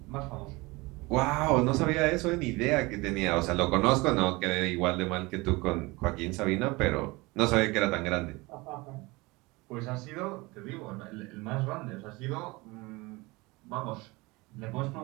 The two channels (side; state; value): left; quieter; 23.4 dB